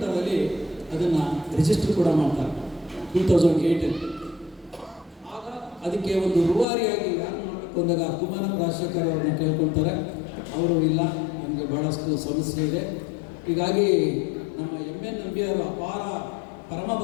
ಅದನ್ನು ರಿಜಿಸ್ಟರ್ ಕೂಡ ಮಾಡ್ತಾರೆ 2008. ಆಗ ಅದಕ್ಕೆ ಒಂದು ರೂವಾರಿಯಾಗಿ ಯಾರು ಮಾಡಬೇಕು ಅಂದಾಗ ಕುಮಾರನ್ ರಾಜಶೇಖರ್ ಅವ್ರನ್ನ ಕೇಳ್ಕೊಳ್ತಾರೆ. ಅವರು ಇಲ್ಲ, ನಮಗೆ ಭಾಳಷ್ಟು ಸಮಸ್ಯೆ ಇದೆ, ಹೀಗಾಗಿ ನಮ್ಮ MN ನಂಬಿಯವರು ಅಪಾರ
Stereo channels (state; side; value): drops out; right; at 6.7 s